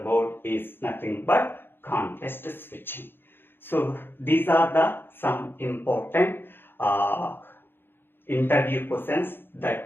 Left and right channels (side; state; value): right; late; 0.10 ms